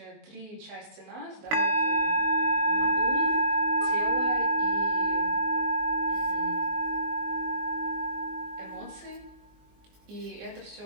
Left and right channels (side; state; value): left; late; 19 ms